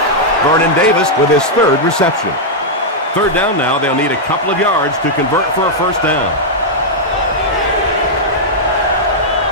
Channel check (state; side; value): normal; both; correlation -0.05